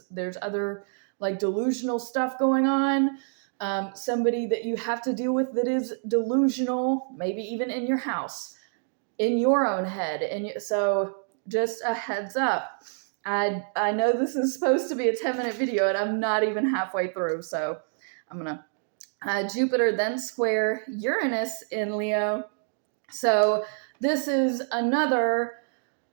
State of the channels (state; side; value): silent; left; digital silence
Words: there's other like delusional stuff going on, somebody that you have to deal with that is delusional, maybe even in your house, in your own head. And so just a heads up. I know this is supposed to be a 10-minute video, and I'm not even halfway through, so I'm going to Jupiter then square Uranus in Leo. So this is another,